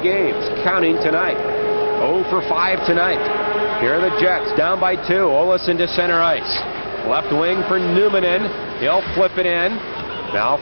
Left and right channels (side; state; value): both; inverted; correlation -1.00